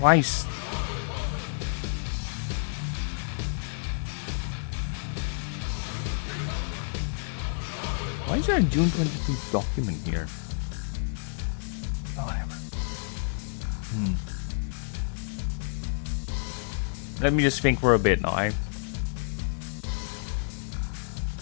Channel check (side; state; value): right; silent; digital silence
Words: Why is there a June 22 document here? Whatever. Let me just think for a bit now.